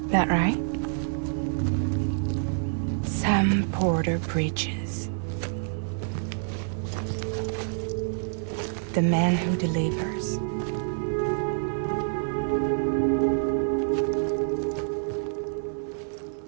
That right? Sam Porter Bridges. The man who delivers.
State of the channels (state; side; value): silent; left; digital silence